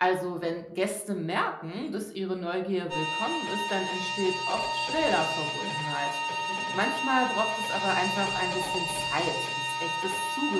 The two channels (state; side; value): identical; both; correlation 1.00